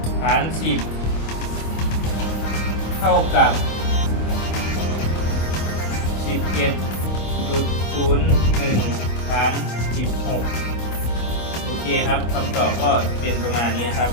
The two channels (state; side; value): late; right; 25 ms